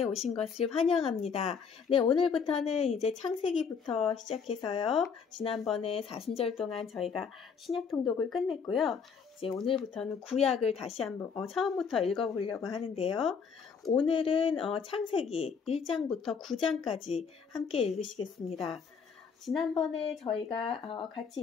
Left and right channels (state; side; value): quieter; right; 6.1 dB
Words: 오신 것을 환영합니다. 네, 오늘부터는 이제 창세기부터 시작해서요. 지난번에 40절 동안 저희가 신약 통독을 끝냈고요. 이제 오늘부터는 구약을 다시 한번 처음부터 읽어보려고 하는데요. 오늘은 창세기 1장부터 9장까지 함께 읽으시겠습니다. 지난번에 저희가 같이